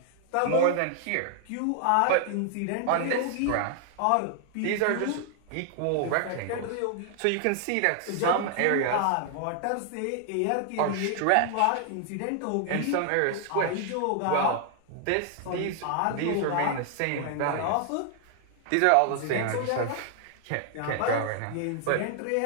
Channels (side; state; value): both; different; correlation 0.00